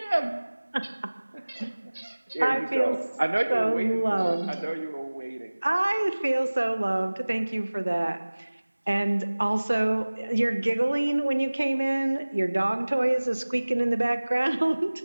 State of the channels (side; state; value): both; inverted; correlation -1.00